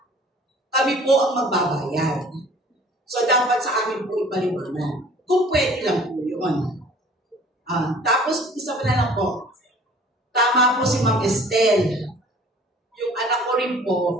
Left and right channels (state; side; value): normal; both; correlation 0.50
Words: kami po ang magbabayad. So dapat sa amin po ipaliwanag. Kung pwede lang po yun. Tapos, isa pa na lang po. Tama po si Ma'am Estelle. Yung anak ko rin